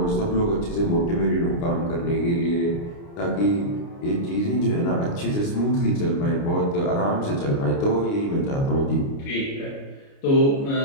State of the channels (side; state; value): right; late; 29 ms